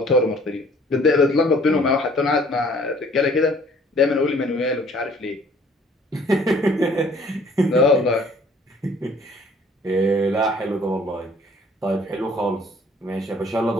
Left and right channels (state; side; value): normal; both; correlation 0.56